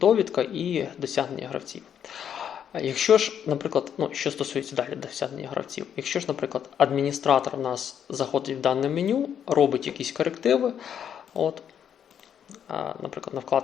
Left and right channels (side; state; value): right; quieter; 8.8 dB